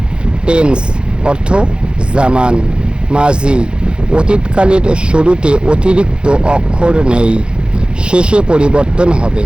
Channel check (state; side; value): late; left; 0.052 ms